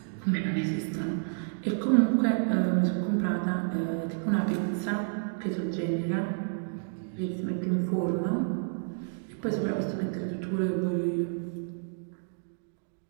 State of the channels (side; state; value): left; silent; digital silence